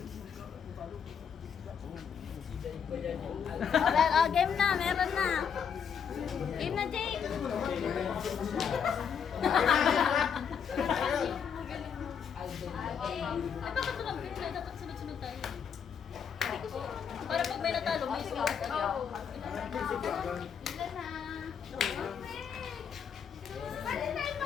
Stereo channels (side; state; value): right; quieter; 7.3 dB